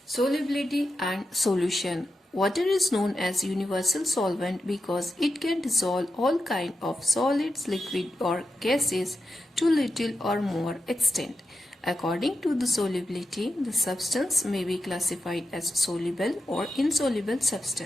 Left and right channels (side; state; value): both; normal; correlation 0.89